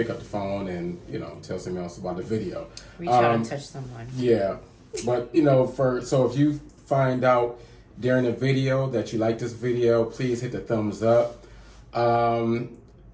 up the phone and tell someone else about the video. Reach out and touch someone. Yeah, but so if you find out during the video that you like this video, please hit the thumbs up. But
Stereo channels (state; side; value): identical; both; correlation 1.00